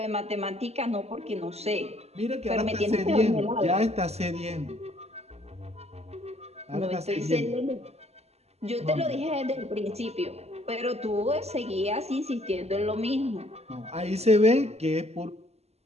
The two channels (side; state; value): left; late; 0.30 ms